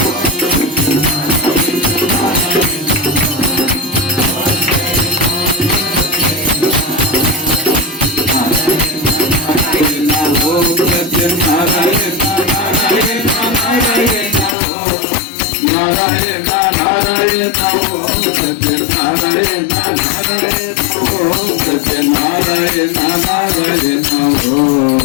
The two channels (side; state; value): right; drops out; at 14.6 s